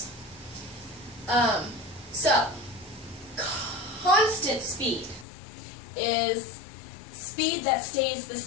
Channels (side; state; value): right; drops out; at 5.2 s